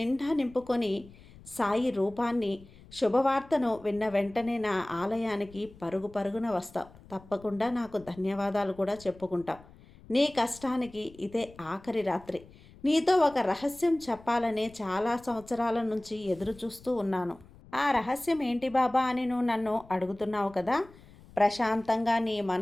నింపుకొని సాయి రూపాన్ని, శుభవార్తను విన్న వెంటనే నా ఆలయానికి పరుగు పరుగున వస్తావు. తప్పకుండా నాకు ధన్యవాదాలు కూడా చెప్పుకుంటావు. నీ కష్టానికి ఇదే ఆఖరి రాత్రి. నీతో ఒక రహస్యం చెప్పాలనే చాలా సంవత్సరాల నుంచి ఎదురు చూస్తూ ఉన్నాను. ఆ రహస్యం ఏంటి బాబా అని నువ్వు నన్ను అడుగుతున్నావు కదా. ప్రశాంతంగా నీ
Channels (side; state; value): left; noise; rumble, 22 dB below the sound